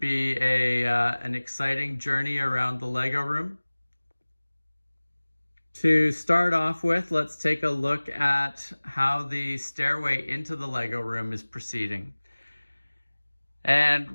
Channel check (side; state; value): both; inverted; correlation -1.00